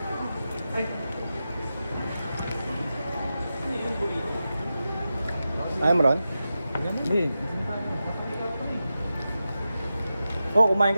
I'm Ron. Hindi. Oh, kumain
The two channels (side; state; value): both; inverted; correlation -0.91